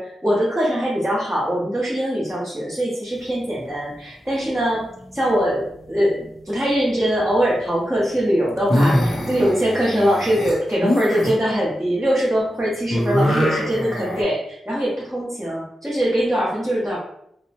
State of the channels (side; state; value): both; normal; correlation 0.90